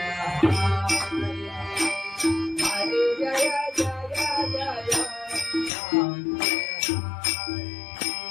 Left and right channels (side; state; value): right; drops out; at 5.7 s